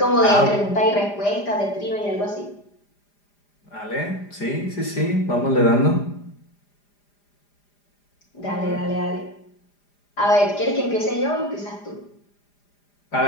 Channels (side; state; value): right; late; 4.9 ms